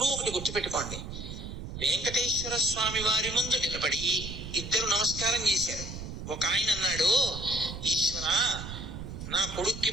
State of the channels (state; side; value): noise; right; rumble, 8 dB below the sound